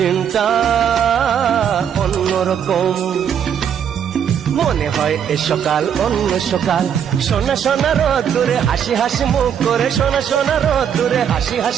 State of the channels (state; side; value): quieter; left; 8.4 dB